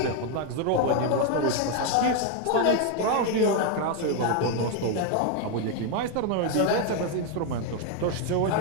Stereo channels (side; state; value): both; different; correlation 0.01